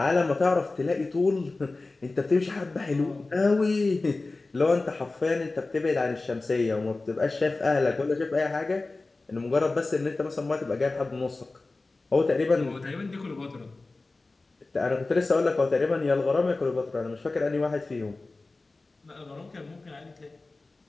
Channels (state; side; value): quieter; right; 3.4 dB